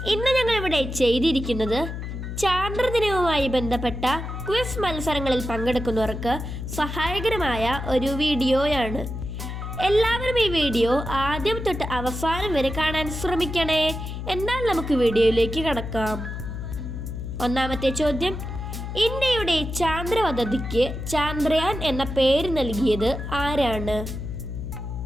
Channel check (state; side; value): noise; left; hum, 6 dB below the sound